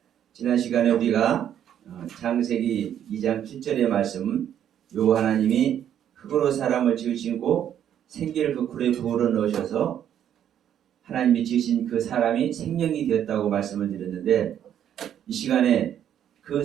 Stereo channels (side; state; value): left; quieter; 10.0 dB